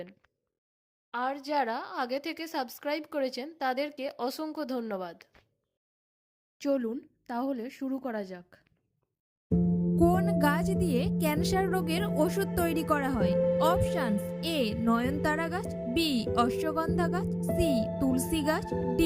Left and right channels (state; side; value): identical; both; correlation 1.00